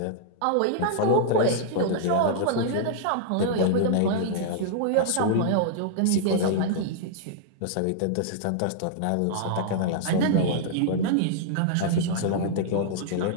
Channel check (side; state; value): both; different; correlation -0.02